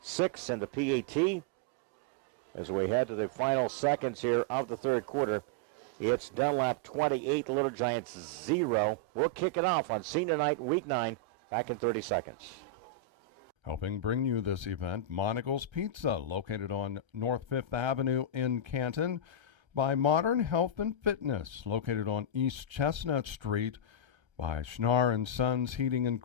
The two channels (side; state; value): left; late; 1.3 ms